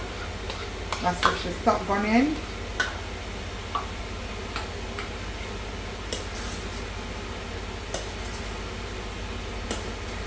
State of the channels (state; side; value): identical; both; correlation 1.00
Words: That's what should stop burning.